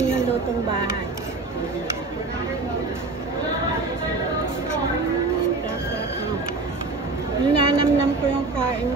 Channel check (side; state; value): left; quieter; 3.5 dB